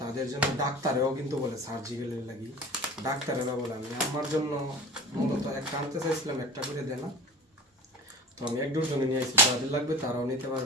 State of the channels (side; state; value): both; normal; correlation 0.35